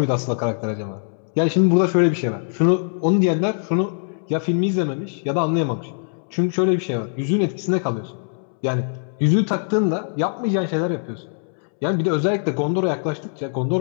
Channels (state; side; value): silent; right; 64 dB below the other